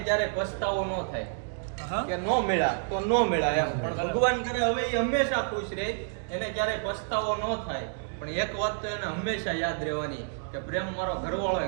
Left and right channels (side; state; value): left; silent; digital silence